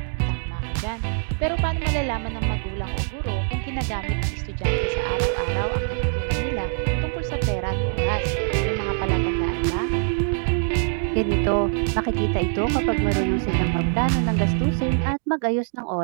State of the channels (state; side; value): silent; left; digital silence